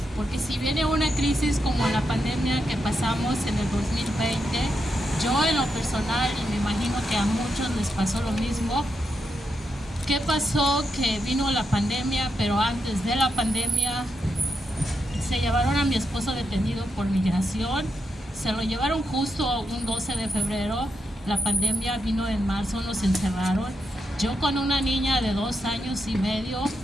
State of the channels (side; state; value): both; normal; correlation 0.84